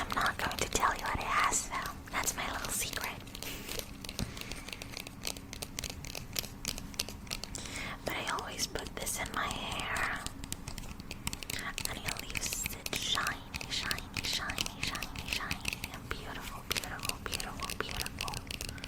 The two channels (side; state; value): both; identical; correlation 1.00